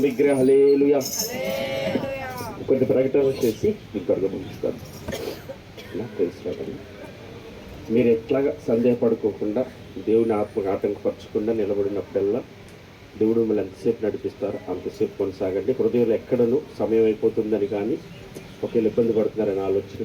విగ్రహ హల్లెలూయా. కొన్ని ప్రకటనలు చేసి ఇంకొక ముగిస్తాను. మీరు ఎట్లాగా సందేహపడుకోకుండా దేవుని ఆత్మకు ఆటంకపరచకుండా నిలబడినప్పుడల్లా దేవుడు మిమ్మల్ని ఎంతసేపు నడిపిస్తారో అంతసేపు కొనసాగండి. హృదయంలో ఎక్కడను సమయం అయిపోతుందని కానీ ఒకవేళ ఇబ్బంది పడుతున్నారని ఆలోచన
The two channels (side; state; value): both; identical; correlation 1.00